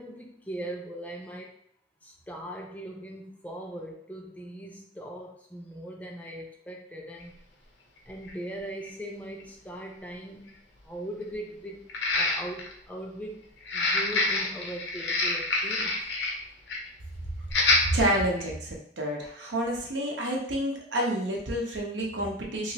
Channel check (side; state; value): both; normal; correlation 0.17